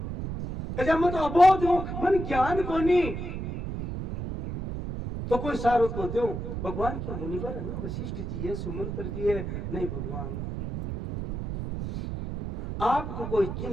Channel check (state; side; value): noise; right; rumble, 5 dB below the sound